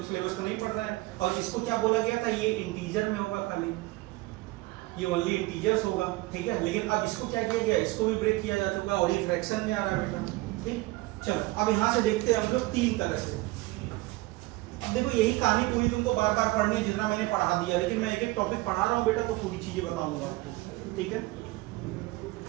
सिलेबस को नहीं पढ़ रहे हैं। और इसको क्या बोला गया था, ये इंटीजर में होगा, खाली ये ओनली इंटीजर्स होगा, ठीक है। लेकिन अब इसको क्या किया गया, इसको भी ब्रेक किया जा चुका और ये फ्रैक्शन में आ रहा है बेटा, ठीक। चलो अब यहाँ से देखते हैं हम लोग 3 तरह से। अब देखो यही कहानी पूरी तुमको बार बार पढ़नी है, जितना मैंने पढ़ा दिया, लेकिन मैं एक एक टॉपिक पढ़ा रहा हूँ बेटा, तो पूरी चीजें बताऊंगा आपको, ठीक है।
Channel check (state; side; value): quieter; left; 20.5 dB